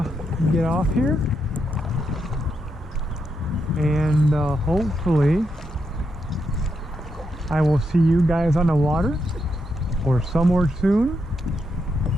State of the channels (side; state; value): both; normal; correlation 0.82